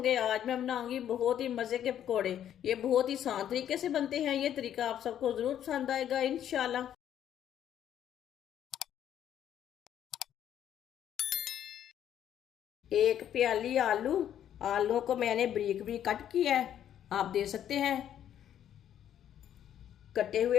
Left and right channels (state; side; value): quieter; right; 10.4 dB